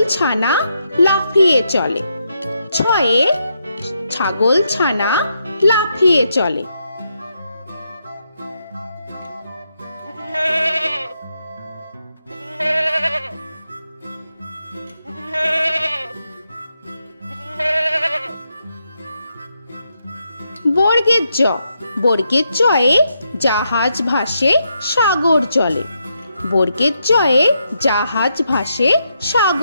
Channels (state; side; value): inverted; both; correlation -0.81